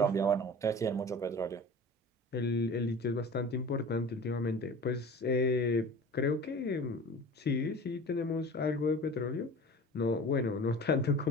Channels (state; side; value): normal; both; correlation 0.39